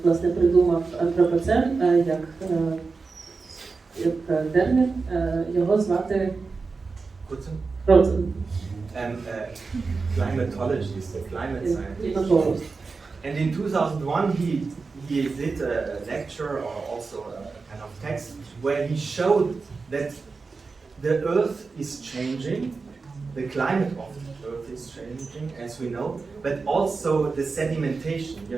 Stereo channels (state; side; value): quieter; left; 4.4 dB